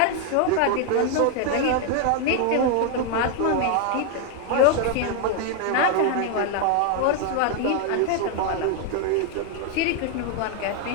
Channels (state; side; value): different; both; correlation 0.00